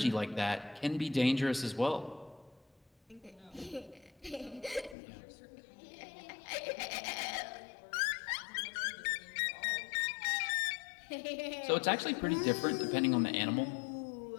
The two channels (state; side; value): drops out; right; at 5.0 s